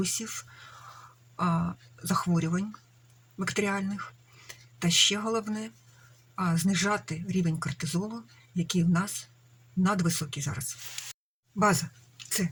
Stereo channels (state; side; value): identical; both; correlation 1.00